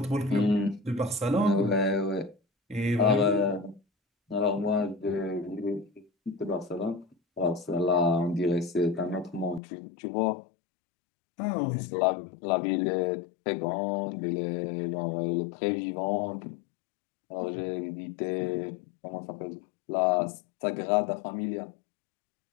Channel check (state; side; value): drops out; right; at 9.6 s